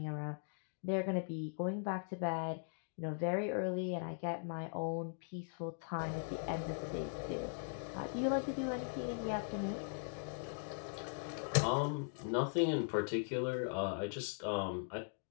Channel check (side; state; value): right; silent; digital silence